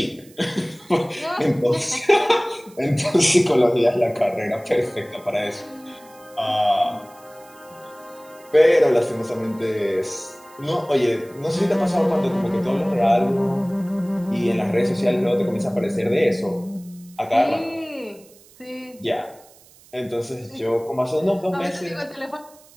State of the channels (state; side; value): noise; right; hiss, 26 dB below the sound